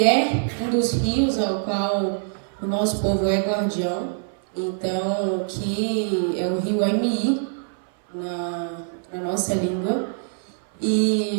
é um dos rios ao qual o nosso povo é guardião. Então, que é o rio MI, na nossa língua.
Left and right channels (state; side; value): silent; left; 58 dB below the other